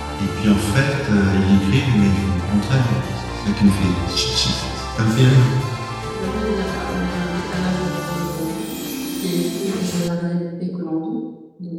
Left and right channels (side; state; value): both; identical; correlation 1.00